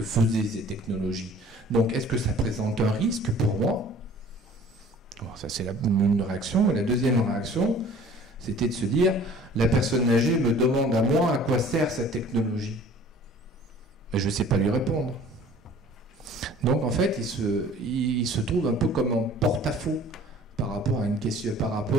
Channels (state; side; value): normal; both; correlation 0.49